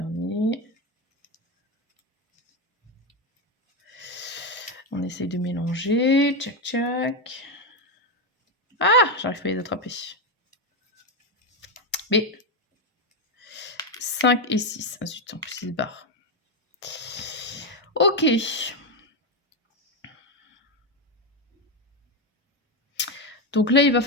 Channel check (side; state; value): both; normal; correlation 0.08